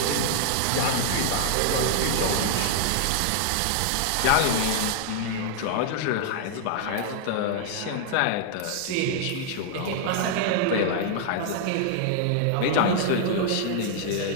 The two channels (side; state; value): both; different; correlation -0.01